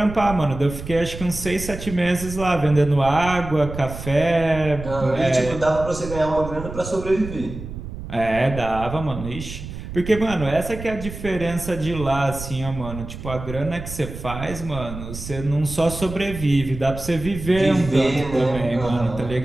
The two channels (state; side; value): noise; right; rumble, 10 dB below the sound